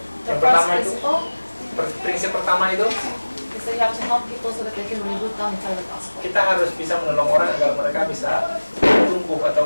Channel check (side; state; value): both; inverted; correlation -1.00